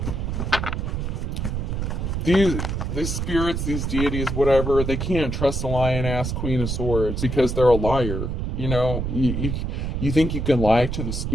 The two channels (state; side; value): noise; right; rumble, 2 dB below the sound